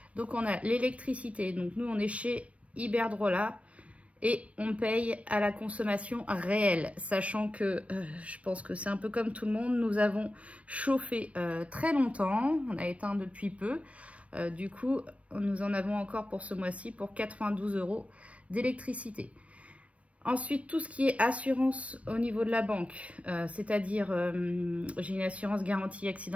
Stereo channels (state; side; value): late; left; 0.064 ms